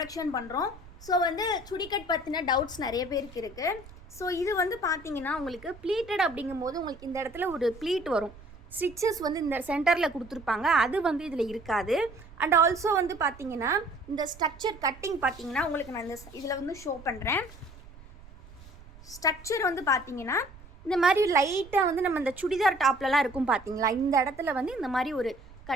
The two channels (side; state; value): right; noise; rumble, 20 dB below the sound